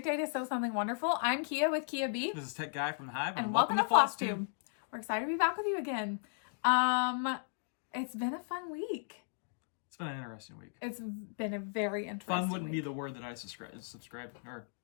day to sew something wonderful. I'm Kia with Kia B. This is Tech Guy from the Hive, and welcome to Flosstube. We're excited to be back with you again. It's been a fun week. It's been an interesting week. It's been a very interesting Fun wouldn't week. be the word that I describe.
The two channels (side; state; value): right; silent; digital silence